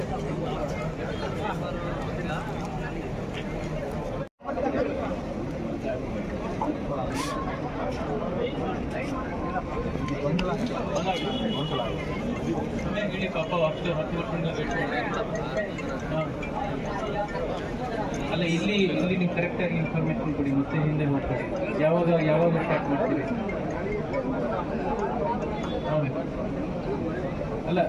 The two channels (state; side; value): identical; both; correlation 1.00